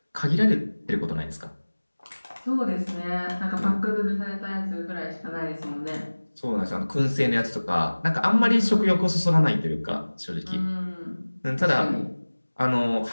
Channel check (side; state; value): both; inverted; correlation -1.00